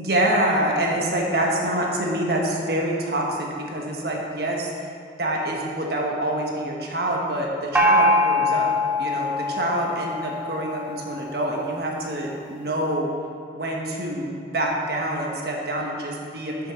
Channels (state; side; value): normal; both; correlation 0.09